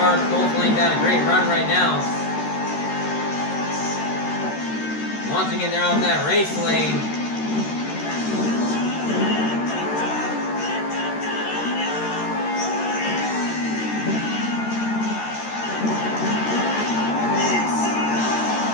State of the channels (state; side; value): late; right; 13 ms